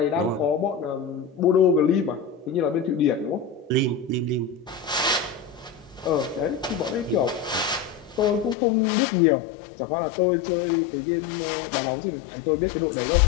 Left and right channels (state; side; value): drops out; right; at 8.6 s